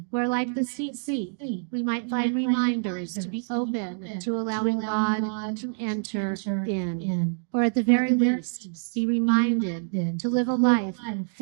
where like the Tzitzit, we might find reminders to be open to allowing God to enter in, or at the very least, be reminded to live a life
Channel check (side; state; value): left; silent; digital silence